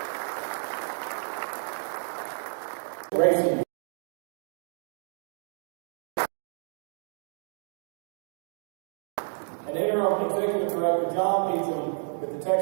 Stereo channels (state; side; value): silent; left; digital silence